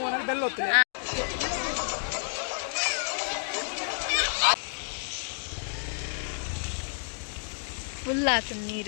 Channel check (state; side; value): silent; right; digital silence